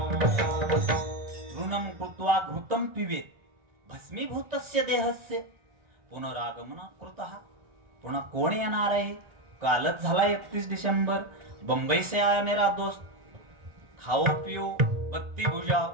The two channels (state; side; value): late; left; 1.4 ms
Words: ऋणम कृत्वा घृतम पिबेत भस्मीभूतस्य देहस्य पुनरागमन कृतः. पुन्हा कोण येणार आहे? कालच झाला 31 डिसेंबर. बंबई से आया मेरा दोस्त. खाओ पिओ बत्ती बुझाओ,